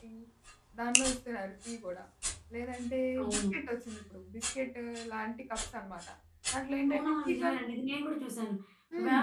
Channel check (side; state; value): both; identical; correlation 1.00